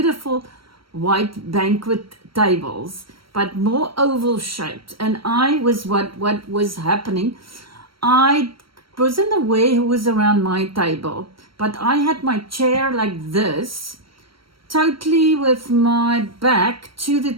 white banquet tables, but more oval shaped. And I was what was happening. I wasn't aware who was around my table, but I had my chair like this, totally with my back to the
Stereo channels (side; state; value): left; late; 0.74 ms